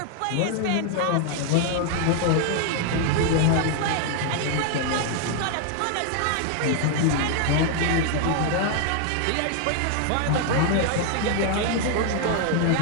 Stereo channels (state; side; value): different; both; correlation 0.00